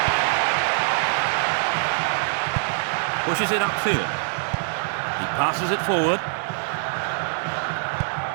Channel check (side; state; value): left; silent; 57 dB below the other